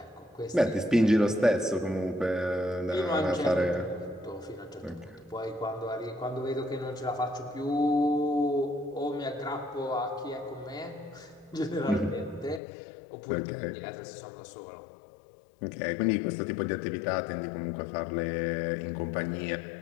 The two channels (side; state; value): right; drops out; at 12.6 s